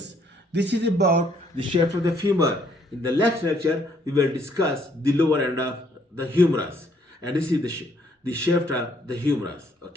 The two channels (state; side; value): normal; both; correlation 0.67